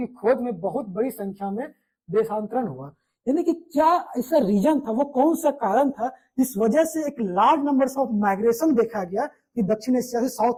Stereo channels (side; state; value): both; identical; correlation 1.00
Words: खोज में बहुत बड़ी संख्या में देशांतरण हुआ। यानी कि क्या ऐसा रीजन था, वो कौन सा कारण था जिस वजह से एक लार्ज नंबर ऑफ माइग्रेशन देखा गया कि दक्षिण एशिया से